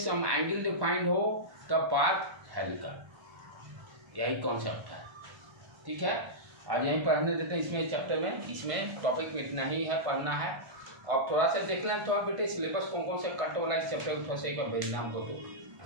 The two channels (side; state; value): left; late; 1.5 ms